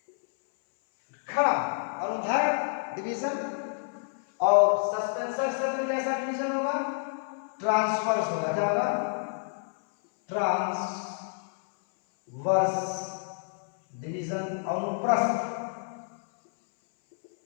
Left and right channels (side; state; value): right; silent; 59 dB below the other